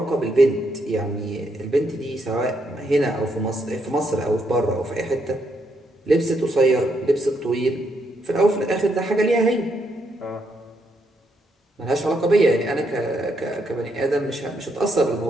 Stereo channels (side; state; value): both; normal; correlation 0.77